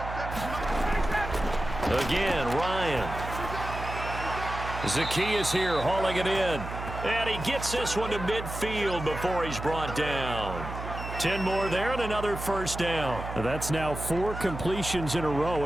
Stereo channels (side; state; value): right; noise; hum, 8 dB below the sound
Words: Again, Ryan. Zacchaeus here hauling it in. And he gets this one to midfield before he's brought down. 10 more there and another 1st down. That's now 4 completions in a row.